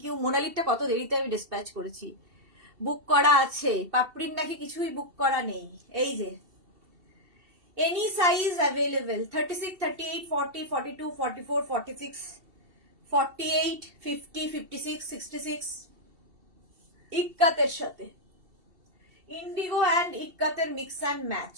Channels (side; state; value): left; late; 2.7 ms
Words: ইউ। মোনালিটা কত দেরিতে আমি ডিসপ্যাচ করেছি, বুক করা আছে। পাপড়ির নাকি কিছুই বুক করা নেই। এই যে এনি সাইজ অ্যাভেলেবেল, 36, 38, 40, 42, 44, 46, 48, 50, 56, 66, ইক্কাতের সাথে ইন্ডিগো অ্যান্ড ইক্কাতের মিক্স অ্যান্ড ম্যাচ,